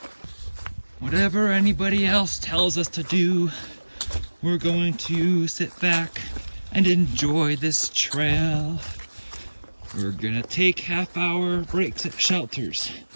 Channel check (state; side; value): inverted; both; correlation -1.00